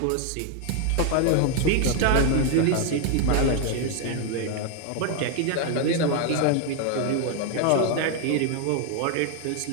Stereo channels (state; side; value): different; both; correlation 0.01